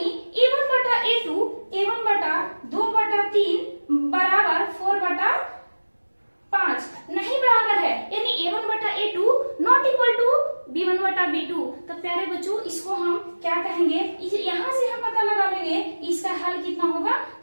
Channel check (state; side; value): inverted; both; correlation -1.00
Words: a1 बटा a2 a1 बटा 2/3 बराबर 4/5 नहीं बराबर है, यानी a1 बटा a2 not equal to b1 बटा b2। तो प्यारे बच्चों इसको हम क्या कहेंगे, यहाँ से हम पता लगा लेंगे इसका हल कितना होगा,